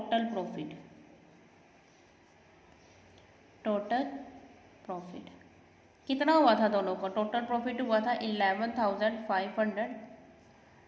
प्रॉफिट। टोटल प्रॉफिट कितना हुआ था दोनों को, टोटल प्रॉफिट हुआ था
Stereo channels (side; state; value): both; identical; correlation 1.00